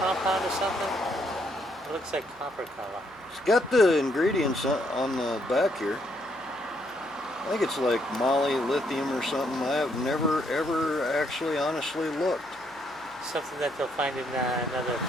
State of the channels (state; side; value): noise; right; hum, 28 dB below the sound